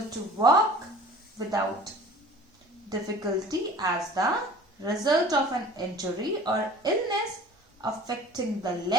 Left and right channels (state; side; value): normal; both; correlation 0.45